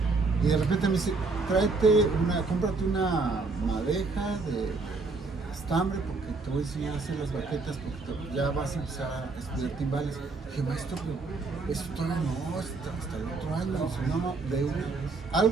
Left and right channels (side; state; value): left; quieter; 3.9 dB